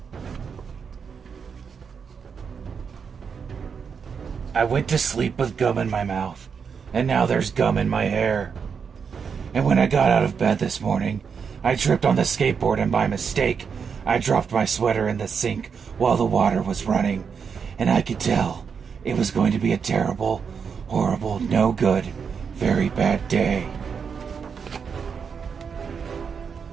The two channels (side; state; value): left; quieter; 6.3 dB